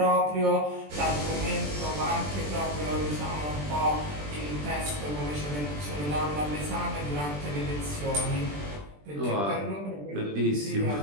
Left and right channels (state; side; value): late; left; 20 ms